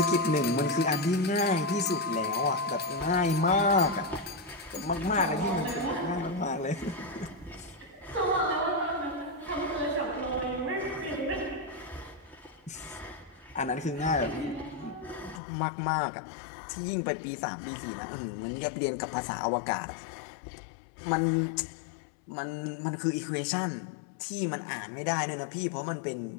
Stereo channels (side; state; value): right; drops out; at 15.4 s